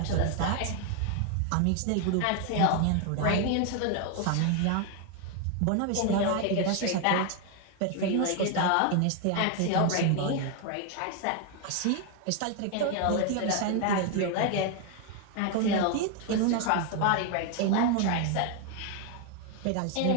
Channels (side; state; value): both; different; correlation 0.01